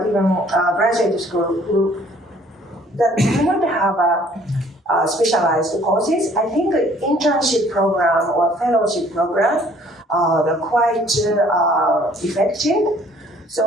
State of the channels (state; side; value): normal; both; correlation 0.58